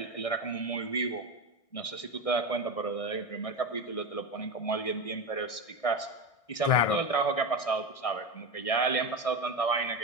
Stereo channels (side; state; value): right; late; 1.6 ms